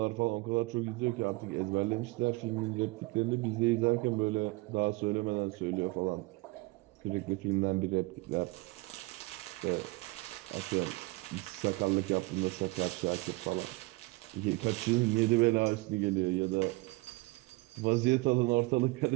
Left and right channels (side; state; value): left; quieter; 23.7 dB